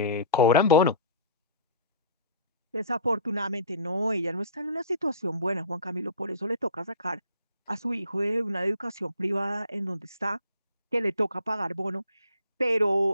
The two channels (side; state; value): both; inverted; correlation -0.43